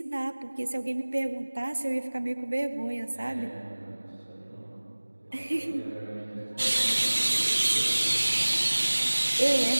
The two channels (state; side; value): inverted; both; correlation -1.00